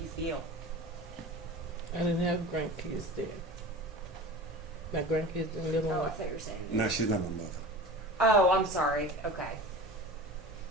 you feel? I didn't have grandkids there. My grandkids didn't live Oh, I on. thought you were saying. No, she's not my mother. Oh, I'm sorry. Okay.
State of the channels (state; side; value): normal; both; correlation 0.35